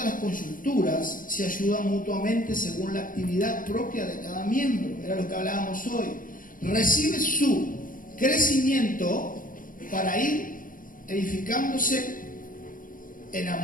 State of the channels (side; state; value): right; late; 0.40 ms